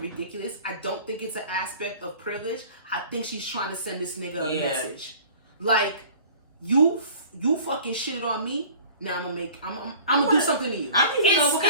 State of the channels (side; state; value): both; inverted; correlation -0.45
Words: I don't think it's an aspect of privilege. I think she's trying to send this nigga a message, like you fucking shitted on me. Now I'm gonna do something to you. I need to know what